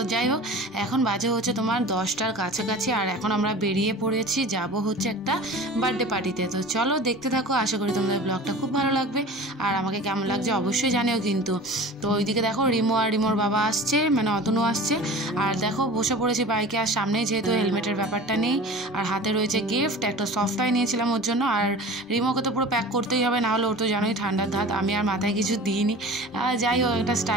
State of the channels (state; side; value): normal; both; correlation 0.38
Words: যাই হোক, এখন বাজে হচ্ছে তোমার 10টার কাছাকাছি, আর এখন আমরা বেরিয়ে পড়েছি, যাব হচ্ছে একটা বার্থডে পার্টিতে। তো চলো দেখতে থাকো, আশা করি তোমাদের ব্লগটা খুব ভালো লাগবে, আর আমাকে কেমন লাগছে অবশ্যই জানিও কিন্তু। তো ওইদিকে দেখো রিমো আর রিমোর বাবা আসছে, মানে অতনু আসছে, আর দেখো বসে পড়েছি বাইকে, আর সামনে যেহেতু হেলমেটের ব্যাপারটা নেই, আর হাতে রয়েছে গিফট, একটা সফট টয় নিয়েছিলাম ওর জন্য। আর রিমোকে তো পুরো প্যাক করতেই হবে, না হলে ওর তো জানোই ঠান্ডার ধাত, আমি আর মাথায় কিছু দিইনি। যাই হোক, একটা